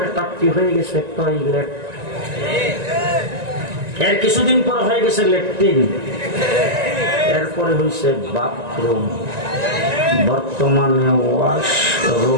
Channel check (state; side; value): late; left; 1.9 ms